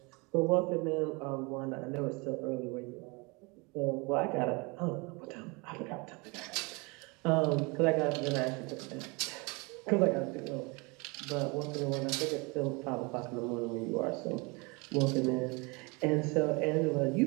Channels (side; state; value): left; quieter; 28.2 dB